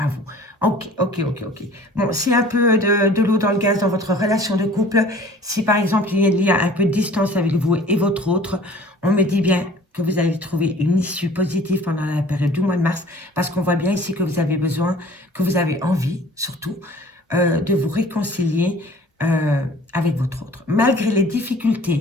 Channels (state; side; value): normal; both; correlation 0.49